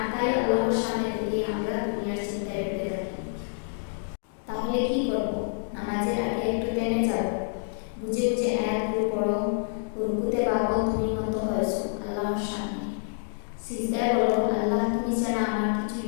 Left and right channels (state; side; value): silent; right; digital silence